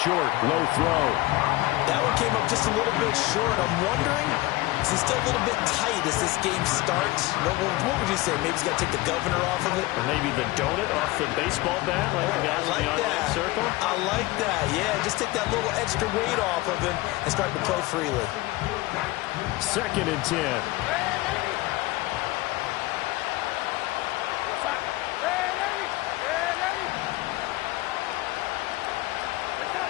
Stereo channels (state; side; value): quieter; right; 19.7 dB